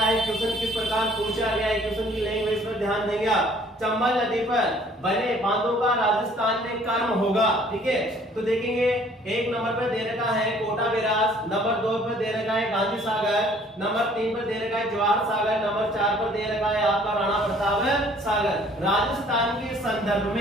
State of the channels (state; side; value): normal; both; correlation 0.57